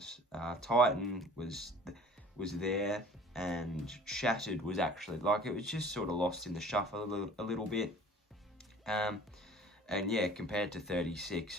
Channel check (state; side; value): normal; both; correlation 0.48